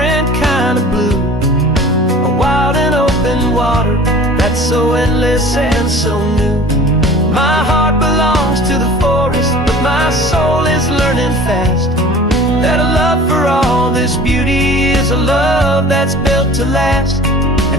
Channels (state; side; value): normal; both; correlation 0.44